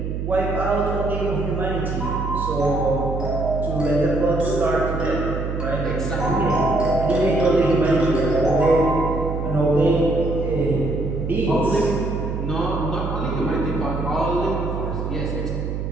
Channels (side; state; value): right; noise; hum, 3 dB below the sound